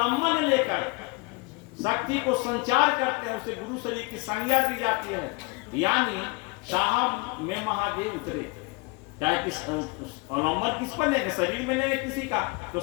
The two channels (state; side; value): quieter; right; 27.2 dB